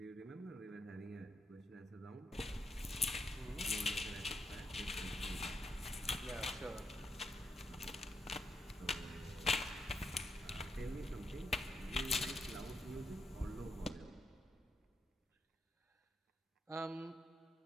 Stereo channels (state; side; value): normal; both; correlation 0.80